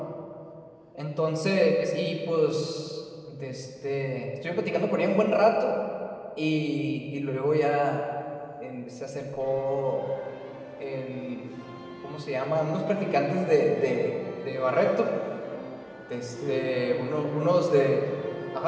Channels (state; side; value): identical; both; correlation 1.00